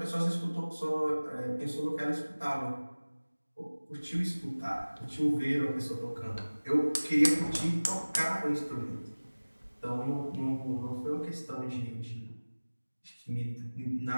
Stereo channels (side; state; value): both; inverted; correlation -1.00